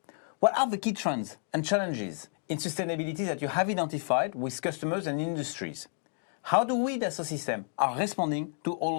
What are the key trends and challenges in sustainability that you have identified with customers and industries? How do we, Dassault Systèmes, are responding to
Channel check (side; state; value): right; silent; 57 dB below the other